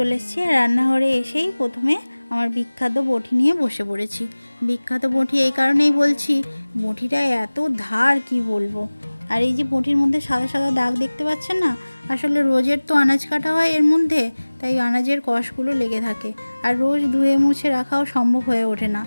এসেছি। আর রান্নাঘরে এসেই প্রথমে আমার বিখ্যাত বঁটি নিয়ে বসে পড়েছি। বিখ্যাত বঁটি এই কারণেই বলছি, বঁটিটা এত ধার কি বলবো। আর এই যে বঁটির মধ্যে সাদা সাদা দাগ দেখতে পাচ্ছেন না, আসলে রোজের তো আনাজ কাটা হয় এর মধ্যে, তাই আনাজের কষগুলো লেগে থাকে। আর রোজ ধুয়ে মুছে রাখাও সম্ভব হয়ে ওঠে না।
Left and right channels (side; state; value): both; inverted; correlation -1.00